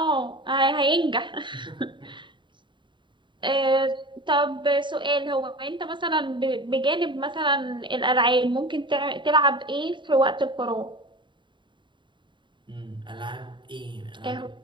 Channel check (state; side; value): late; left; 0.23 ms